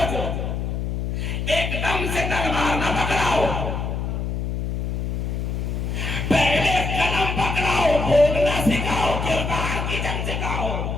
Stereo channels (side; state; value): left; noise; hum, 2 dB below the sound